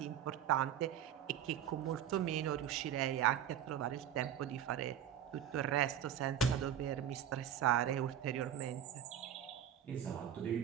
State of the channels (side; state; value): left; quieter; 9.9 dB